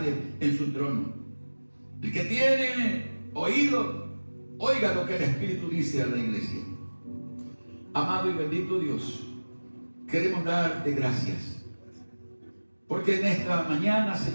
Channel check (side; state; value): both; inverted; correlation -1.00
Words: en su trono. El que tiene oído, oiga lo que el Espíritu dice a la iglesia. Amado y bendito Dios, queremos darte gracias, porque en esta mañana,